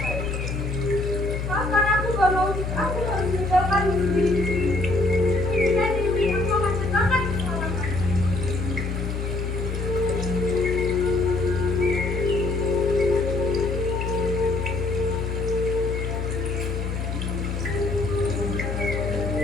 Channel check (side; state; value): left; noise; hum, 3 dB below the sound